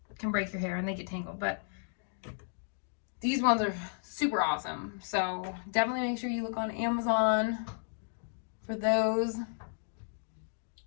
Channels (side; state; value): right; silent; digital silence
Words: can break your hair and they get tangled. But these ones are super awesome. So definitely make sure you look on Amazon for those.